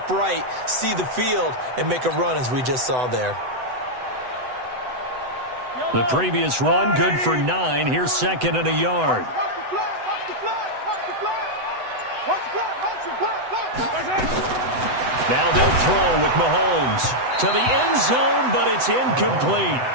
see the field, and make a run as we just saw there. The previous run, good for 9. Here's 2nd and a yard. Now they'll throw with Mahomes to the end zone, but it's incomplete.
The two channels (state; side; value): late; left; 8.0 ms